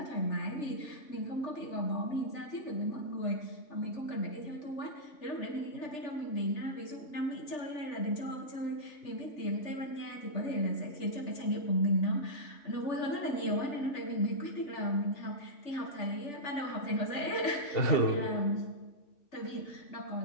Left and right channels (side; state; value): right; late; 3.4 ms